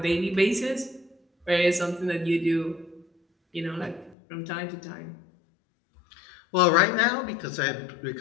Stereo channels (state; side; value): drops out; right; at 4.2 s